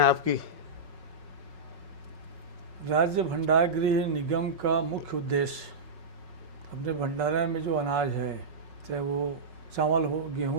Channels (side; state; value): left; late; 5.4 ms